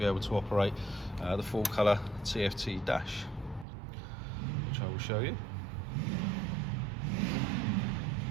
able to operate the full colour TFT dash, which I will show you.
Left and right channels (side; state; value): left; drops out; at 3.7 s